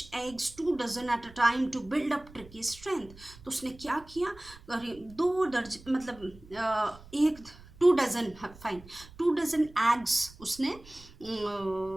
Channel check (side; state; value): right; noise; rumble, 21 dB below the sound